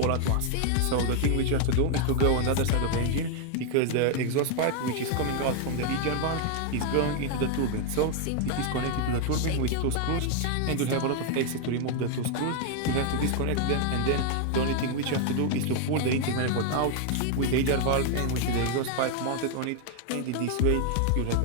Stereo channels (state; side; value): different; both; correlation 0.00